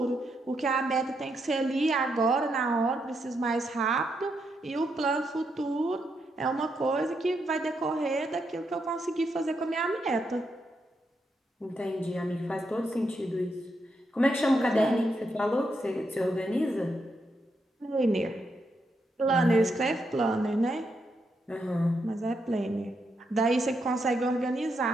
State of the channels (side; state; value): both; normal; correlation 0.81